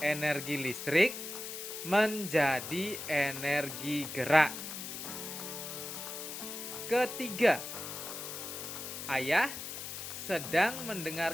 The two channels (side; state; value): left; noise; hiss, 7 dB below the sound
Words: listrik menjadi energi gerak. Ketiga, Ayah sedang